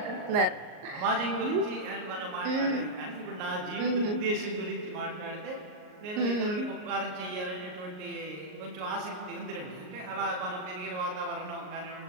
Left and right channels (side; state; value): left; late; 38 ms